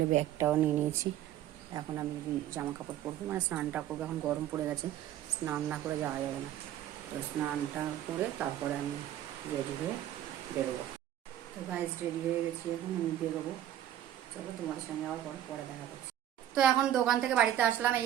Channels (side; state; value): left; quieter; 11.8 dB